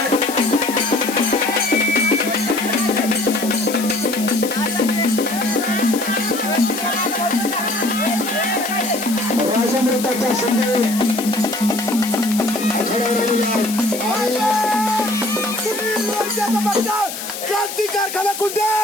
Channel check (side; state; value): left; noise; hiss, 8 dB below the sound